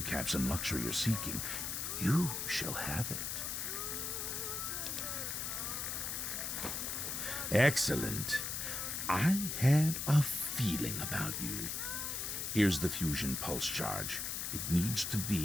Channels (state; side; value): noise; left; hiss, 3 dB below the sound